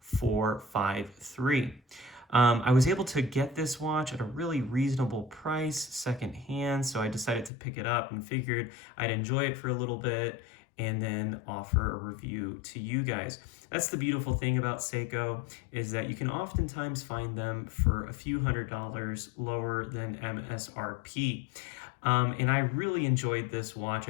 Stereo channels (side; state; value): right; drops out; at 7.5 s